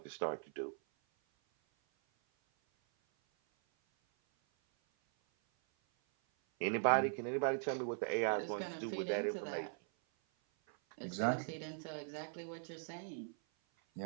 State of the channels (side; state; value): left; silent; 51 dB below the other